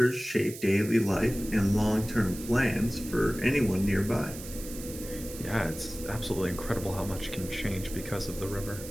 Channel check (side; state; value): right; noise; hiss, 13 dB below the sound